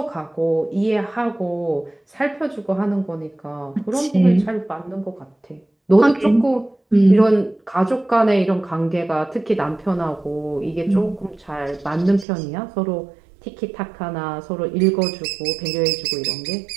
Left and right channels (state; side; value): drops out; left; at 12.2 s